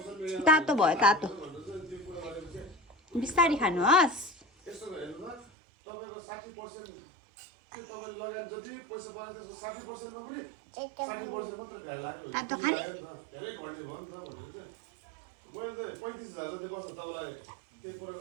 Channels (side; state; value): left; drops out; at 5.5 s